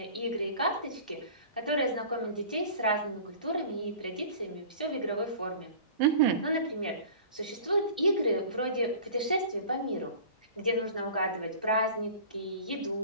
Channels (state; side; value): inverted; both; correlation -0.42